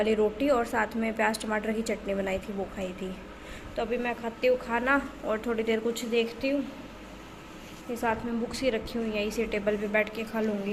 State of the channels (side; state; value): both; identical; correlation 1.00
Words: रोटी, और साथ में प्याज टमाटर की चटनी बनाई थी, वो खाई थी। तो अभी मैं खाती हूँ खाना और थोड़ी देर कुछ देखती हूँ। ये साथ में बुक्स ही रखी हुई हैं, इसी टेबल पे बैठ के खा